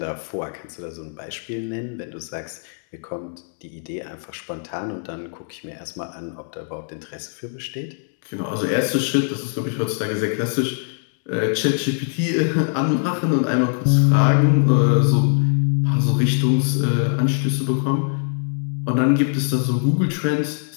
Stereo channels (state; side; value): silent; right; digital silence